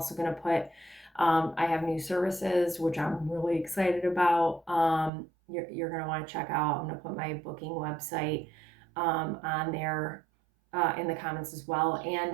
going to put, I have new services, which I'm really excited about. You're going to want to check out. I'm going to put my booking website on there in the comments as well.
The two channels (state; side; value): drops out; left; at 5.1 s